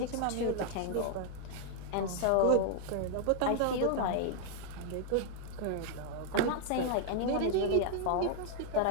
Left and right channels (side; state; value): both; different; correlation 0.00